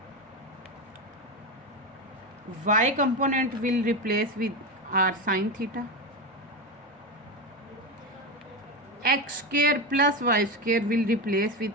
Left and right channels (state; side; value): normal; both; correlation 0.16